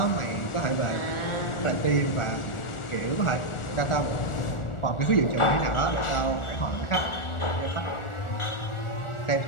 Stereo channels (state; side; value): late; right; 1.4 ms